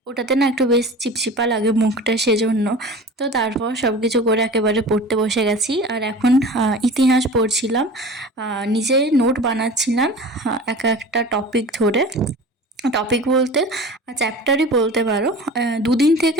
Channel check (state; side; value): normal; both; correlation 0.38